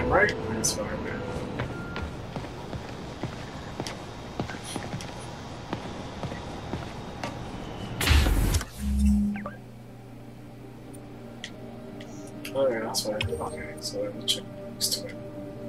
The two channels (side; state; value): both; identical; correlation 1.00